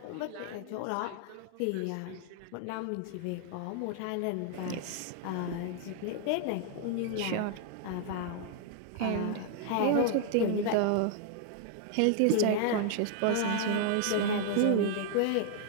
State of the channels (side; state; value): both; different; correlation 0.00